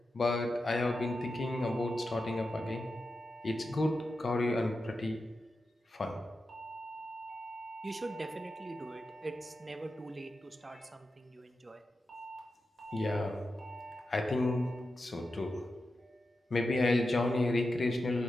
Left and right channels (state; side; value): normal; both; correlation 0.90